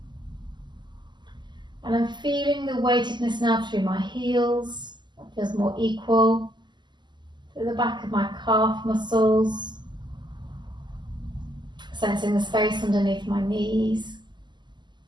And I'm feeling the weightedness now through my heels. That feels more equal. Through the back of my calf muscles. Sensing the space underneath my knees.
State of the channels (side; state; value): left; late; 0.21 ms